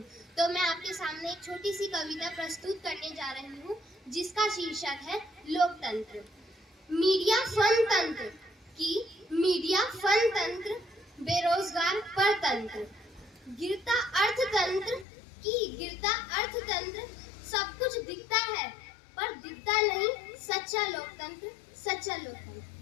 तो मैं आपके सामने एक छोटी सी कविता प्रस्तुत करने जा रही हूँ जिसका शीर्षक है लोकतंत्र। मीडिया फन तंत्र की मीडिया फन तंत्र, बेरोजगार परतंत्र, गिरता अर्थतंत्र की गिरता अर्थतंत्र। सब कुछ दिखता है पर दिखता नहीं सच्चा लोकतंत्र, सच्चा लोकतंत्र।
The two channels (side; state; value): right; drops out; at 15.1 s